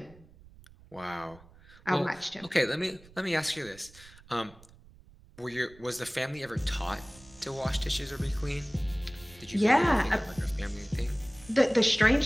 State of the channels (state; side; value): noise; right; rumble, 23 dB below the sound